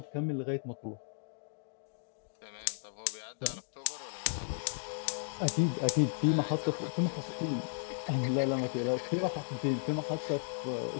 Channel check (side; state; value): right; silent; digital silence